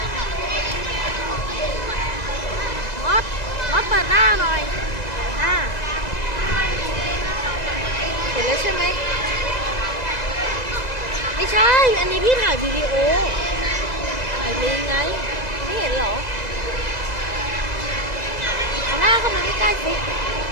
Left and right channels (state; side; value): late; right; 2.0 ms